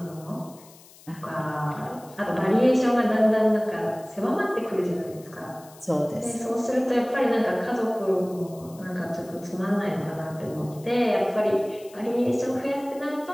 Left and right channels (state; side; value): noise; left; hiss, 23 dB below the sound